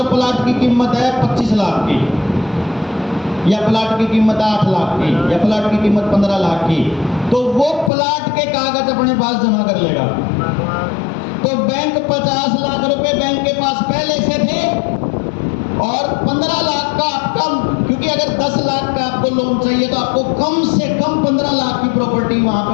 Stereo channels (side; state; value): right; drops out; at 7.9 s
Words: प्लाट की कीमत है 25 लाख की, या प्लाट की कीमत 8 लाख की, या प्लाट की कीमत 15 लाख की, तो वो प्लाट के कागज अपने पास जमा कर लेगा। तो बैंक 50 लाख रुपए बैंक के पास पहले से थे, और 15 लाख का आपका, क्योंकि अगर 10 लाख का आपको लोन चाहिए तो आपको कम से कम 15 लाख की प्रॉपर्टी वहां पे